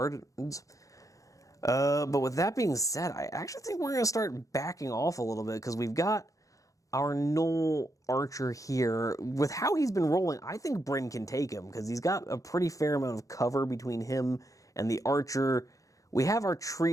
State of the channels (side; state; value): right; late; 0.16 ms